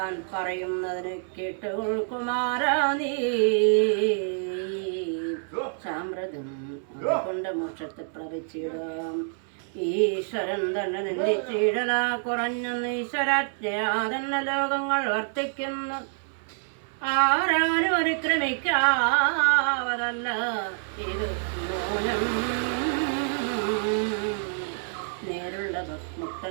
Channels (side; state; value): left; silent; digital silence